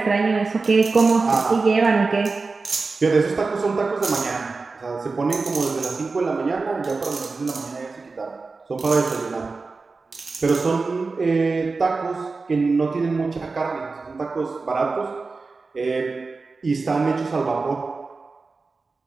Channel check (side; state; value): left; quieter; 4.0 dB